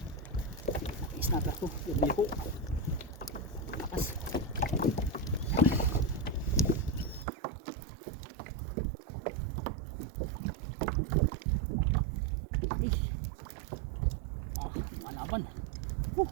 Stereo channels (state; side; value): drops out; left; at 7.2 s